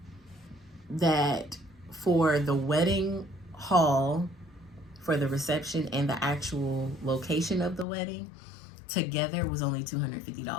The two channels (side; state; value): right; drops out; at 7.9 s